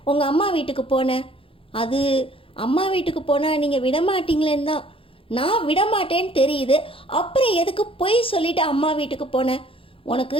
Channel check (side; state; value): right; late; 0.26 ms